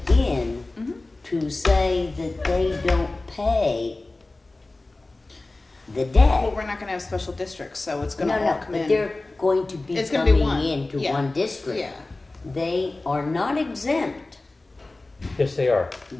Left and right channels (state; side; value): quieter; right; 3.1 dB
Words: in Mhm. to say that they don't pay the Well, debt, we're not gonna have special districts, so it's no, gonna all no, come but in. they're going to be It's gonna be coming one, into yeah, one district. Yeah, They are not exempt. Yes, they are.